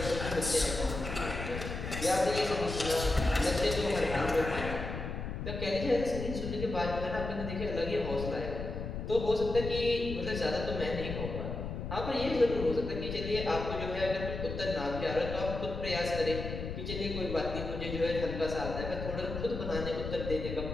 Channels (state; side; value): noise; left; rumble, 6 dB below the sound